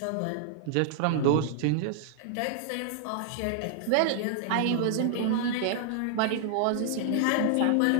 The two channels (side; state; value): both; different; correlation -0.01